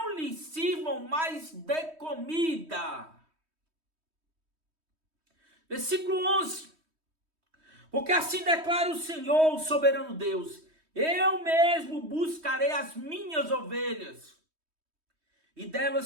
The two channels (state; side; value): late; left; 3.2 ms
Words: lhes sirvam mais de comida. Versículo 11. Porque assim declara o Senhor, o soberano Deus, eu mesmo buscarei as minhas ovelhas, e